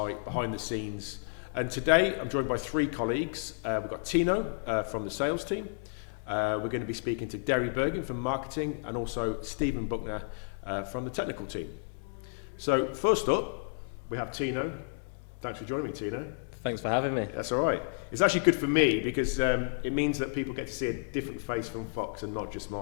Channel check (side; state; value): right; silent; 57 dB below the other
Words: behind the scenes. And today I'm joined by three colleagues. We've got Tino from the sales team. We're going to be speaking to Derry Bergen from marketing and also Stephen Buckner from the technical team. So first up, we have Tino. Thanks for joining me, Tino. Thanks for having me. That's all right. It's actually good for me because it means that people get to see a different face from Fox and not just